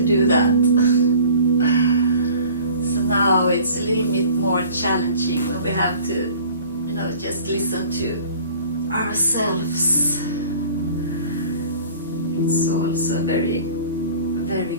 do that. So now it's a little bit more challenging when we have to, just listen to ourselves. It's also very, very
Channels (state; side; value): inverted; both; correlation -0.48